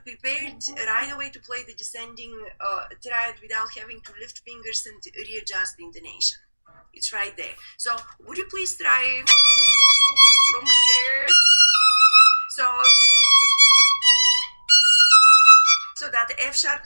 right away to play the descending triad without having to lift fingers and readjust the intonation. It's right there. So would you please try from here? So that the F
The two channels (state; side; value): inverted; both; correlation -1.00